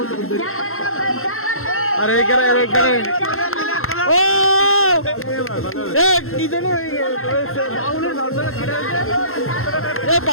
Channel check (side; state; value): right; late; 0.62 ms